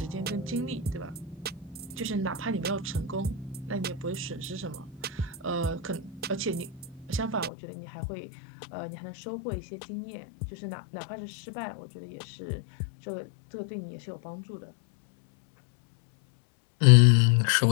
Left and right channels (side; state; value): right; drops out; at 7.5 s